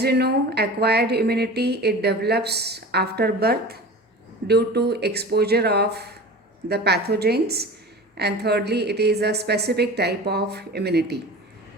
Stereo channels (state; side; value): normal; both; correlation 0.36